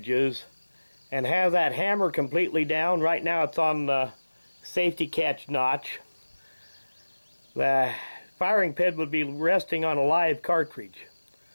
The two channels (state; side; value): inverted; both; correlation -1.00